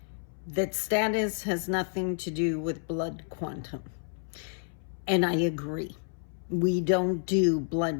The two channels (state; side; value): silent; right; 58 dB below the other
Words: that status has nothing to do with blood quantum. And I agree. We don't do